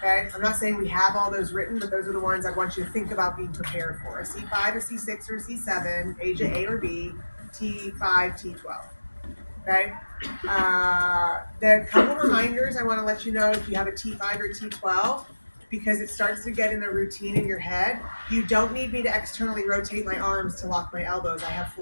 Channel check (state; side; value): inverted; both; correlation -1.00